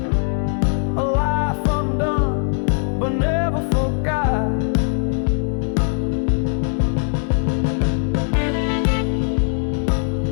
A life undone, but never forgot.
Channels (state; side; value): silent; right; 60 dB below the other